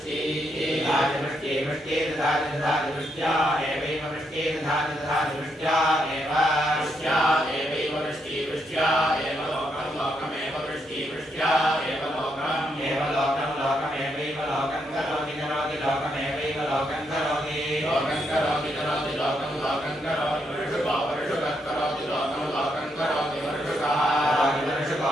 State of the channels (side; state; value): both; normal; correlation 0.78